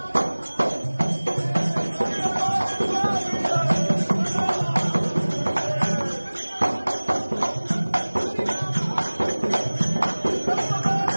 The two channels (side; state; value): both; inverted; correlation -1.00